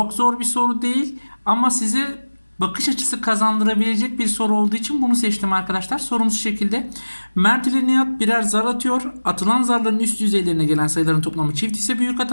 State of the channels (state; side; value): inverted; both; correlation -1.00